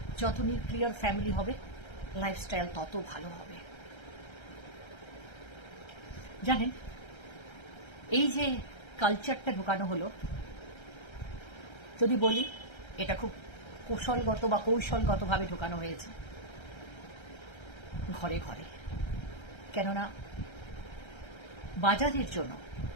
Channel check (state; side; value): late; right; 1.3 ms